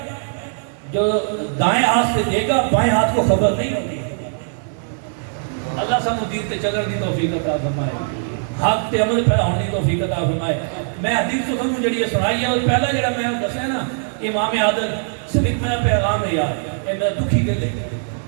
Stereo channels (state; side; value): silent; left; digital silence